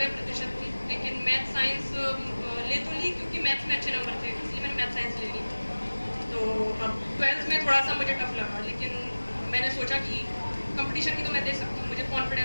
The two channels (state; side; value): inverted; both; correlation -1.00